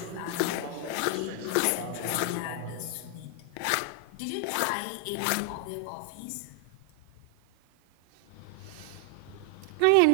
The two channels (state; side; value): different; both; correlation 0.00